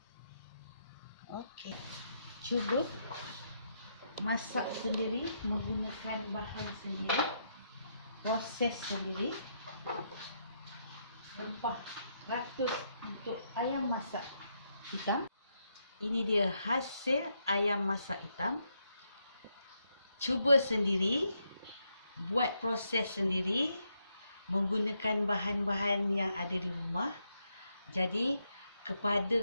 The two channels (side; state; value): both; inverted; correlation -0.79